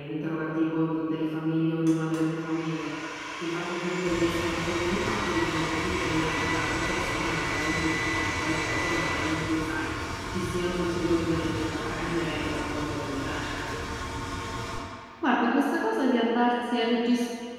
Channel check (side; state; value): both; identical; correlation 1.00